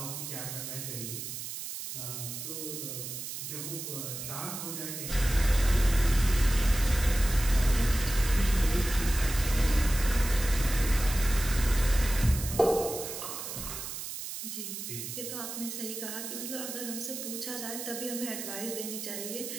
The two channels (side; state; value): right; noise; hiss, 7 dB below the sound